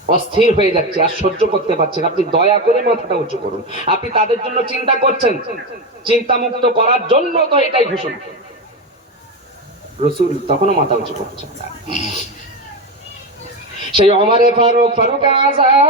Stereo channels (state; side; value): normal; both; correlation 0.15